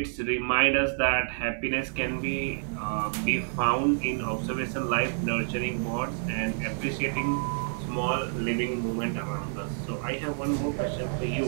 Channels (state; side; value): silent; left; digital silence